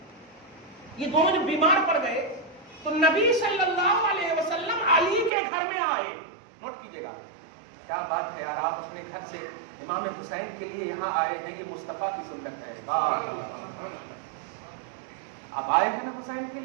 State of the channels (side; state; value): left; drops out; at 5.3 s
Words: یہ دونوں جب بیمار پڑ گئے تو نبی صلی اللہ علیہ وسلم علی کے گھر میں آئے۔ نوٹ کیجئے گا، کیا بات ہے یار، آپ اپنے گھر سے امام حسین کے لیے یہاں آئے ہیں، یہ مصطفیٰ کی سنت ہے۔ آپ آئے ہیں نا حسین کے